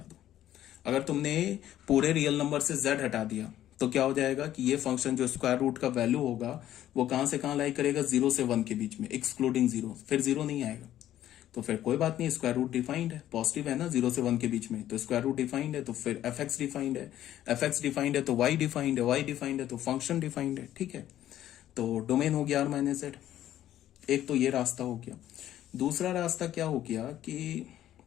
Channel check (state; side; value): quieter; right; 12.4 dB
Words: दो। अगर तुमने पूरे रियल नंबर से z हटा दिया तो क्या हो जाएगा कि ये फंक्शन जो स्क्वायर रूट का वैल्यू होगा वो कहां से कहां लाई करेगा, 0 से 1 के बीच में, एक्सक्लूडिंग 0, फिर 0 नहीं आएगा। तो फिर कोई बात नहीं, स्क्वायर रूट डिफाइंड है, पॉजिटिव है ना 0 से 1 के बीच में, तो स्क्वायर रूट डिफाइंड है, तो फिर एफ एक्स डिफाइंड है, एफ एक्स डिफाइंड है तो वाई डिफाइंड है, वाई डिफाइंड है तो फंक्शन डिफाइंड है। ठीक है, तो डोमेन हो गया आर माइनस जेड। एक तो ये रास्ता हो गया। दूसरा रास्ता क्या हो गया कि